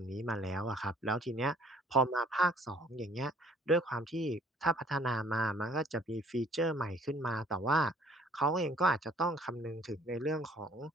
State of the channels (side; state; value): both; normal; correlation 0.57